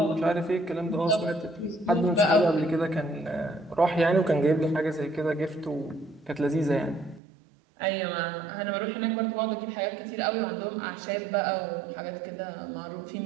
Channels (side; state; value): left; drops out; at 7.2 s